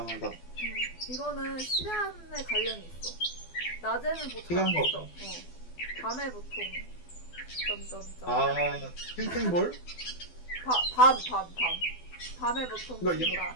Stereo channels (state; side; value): late; right; 12 ms